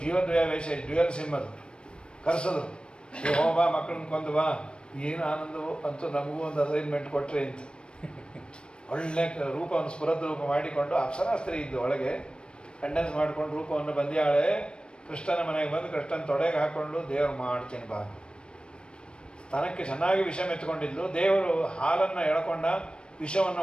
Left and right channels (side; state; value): right; late; 0.055 ms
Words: ಜೀವದ್ವಯ ವೇಷ ಡ್ಯುಯಲ್ ಸಿಮ್ಮದು ಕರೆಸಿದ್ರು, ಹೋಬಾ ಮಕ್ಕಳನ್ನ ಕೊಂದು ಬಾ. ಏನು ಆನಂದವು ಅಂತೂ, ನಮಗೂ ಒಂದು ಅಸೈನ್ಮೆಂಟ್ ಕೊಟ್ಟರೆ ಅಂತ. ಒಳ್ಳೆ ರೂಪವನ್ನು ಸ್ಫುರದ್ ರೂಪ ಮಾಡಿಕೊಂಡು ಅಪ್ಸರಾಸ್ತ್ರಿ ಇದ್ದು ಒಳಗೆ ಕಂಡೆನ್ಸ್ ಮಾಡಿಕೊಂಡು ರೂಪವನ್ನು ಬಂದ್ಯಾಳೆ. ಕೃಷ್ಣನ ಮನೆಗೆ ಬಂದು ಕೃಷ್ಣನ ತೊಡೆಗೆ ಹಾಕ್ಕೊಂಡು ದೇವ್ರು ಮಾಡ್ತೀನಿ ಬಾ. ಸ್ತನಕ್ಕೆ ಚೆನ್ನಾಗಿ ವಿಷ ಮೆತ್ಕೊಂಡಿದ್ಲು. ದೇವರು ಹಾಲನ್ನು ಎಳ್ಕೊಂಡ ವಿಷವನ್ನು